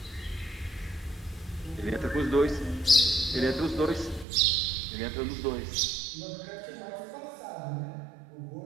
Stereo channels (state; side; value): drops out; left; at 4.2 s